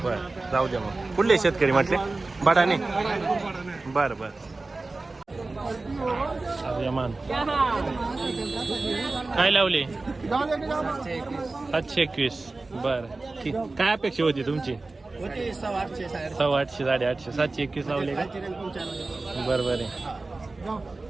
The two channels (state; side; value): quieter; left; 3.4 dB